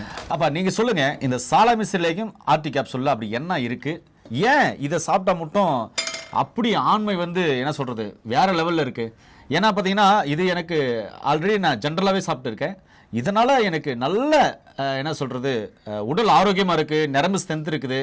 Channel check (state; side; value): identical; both; correlation 1.00